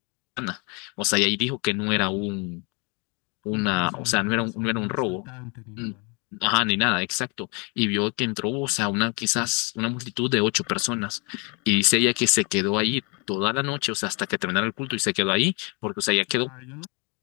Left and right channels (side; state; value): right; quieter; 32.0 dB